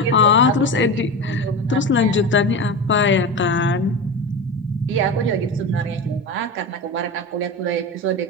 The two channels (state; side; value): normal; both; correlation 0.24